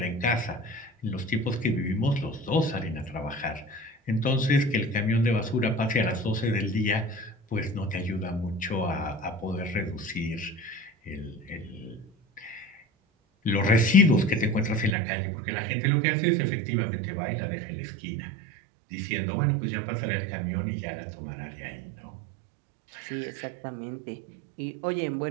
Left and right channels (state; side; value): drops out; left; at 15.0 s